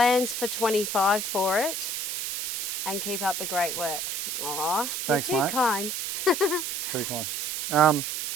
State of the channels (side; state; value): right; noise; hiss, 2 dB below the sound